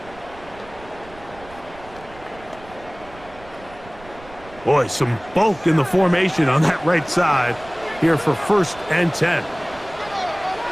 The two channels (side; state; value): right; noise; rumble, 21 dB below the sound